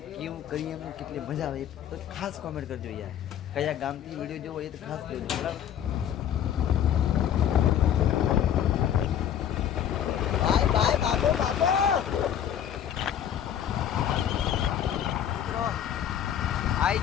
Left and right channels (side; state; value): right; quieter; 9.7 dB